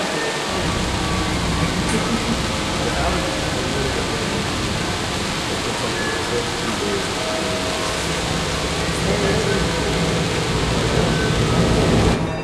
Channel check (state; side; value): identical; both; correlation 1.00